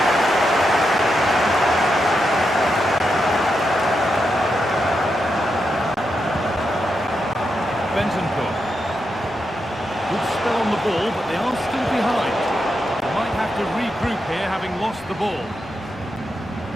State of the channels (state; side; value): normal; both; correlation 0.85